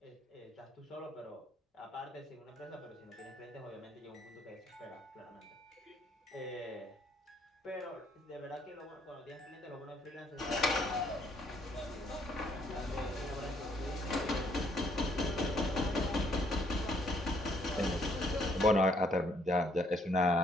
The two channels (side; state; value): both; normal; correlation 0.68